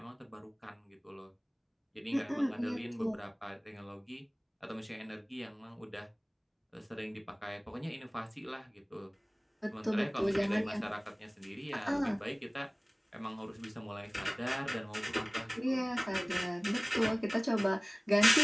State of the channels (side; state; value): both; identical; correlation 1.00